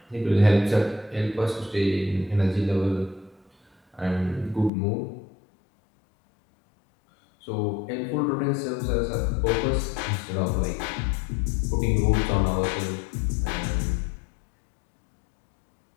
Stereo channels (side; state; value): right; drops out; at 4.7 s